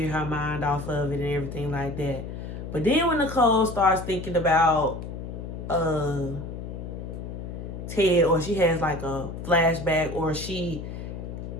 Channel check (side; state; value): left; noise; hum, 8 dB below the sound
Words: her mind off of it and everything like that. But then when Nicole starts thinking about Ted, or she has like a flashback, or she